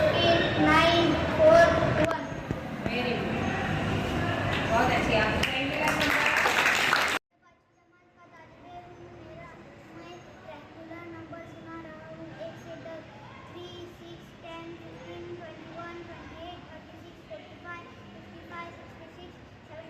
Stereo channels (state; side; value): identical; both; correlation 1.00